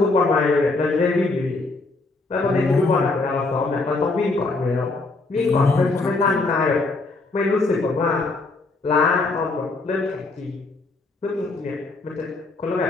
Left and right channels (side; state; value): right; quieter; 3.4 dB